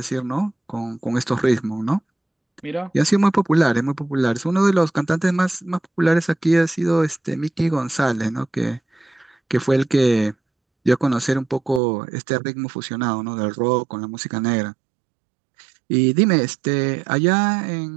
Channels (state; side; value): drops out; left; at 11.8 s